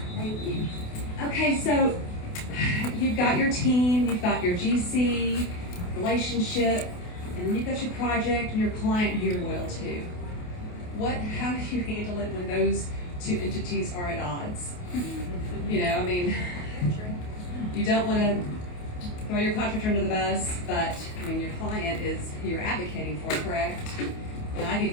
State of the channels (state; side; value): late; right; 28 ms